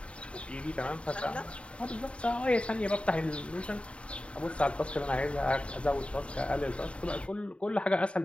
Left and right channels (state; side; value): late; right; 0.060 ms